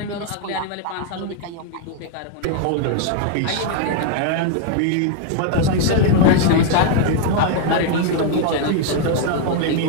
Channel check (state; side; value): different; both; correlation 0.00